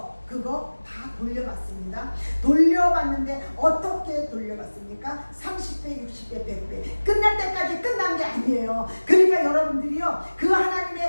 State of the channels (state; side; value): inverted; both; correlation -1.00